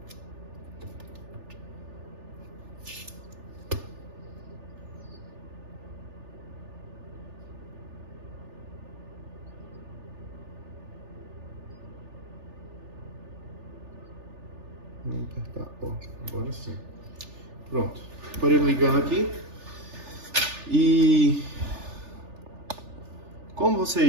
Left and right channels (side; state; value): left; late; 3.4 ms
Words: Vamos apertar, ó, agora sim. Pronto, aparelho ligando aqui. E como